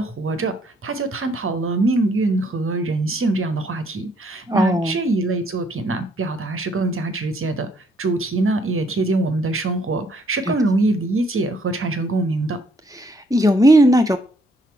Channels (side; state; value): both; normal; correlation 0.68